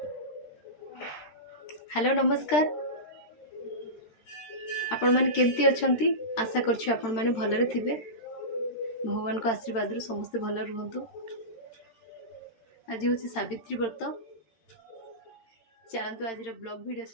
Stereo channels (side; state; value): right; late; 13 ms